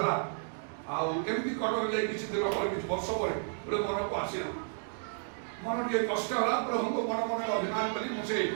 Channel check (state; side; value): silent; left; digital silence